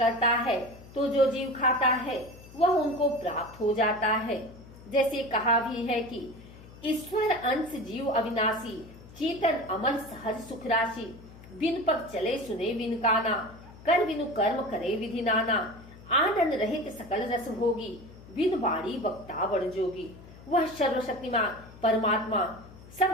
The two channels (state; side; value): noise; left; hum, 19 dB below the sound